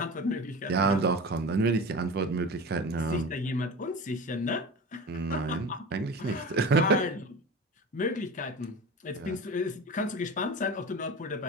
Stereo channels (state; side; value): normal; both; correlation 0.32